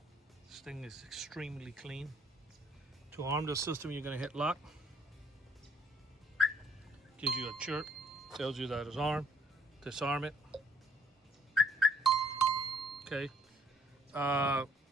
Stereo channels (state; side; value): normal; both; correlation 0.61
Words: This thing is extremely clean. To arm the system, you're going to hit lock. Gives you a chirp. Tells you that it's armed. Disarm it. Okay.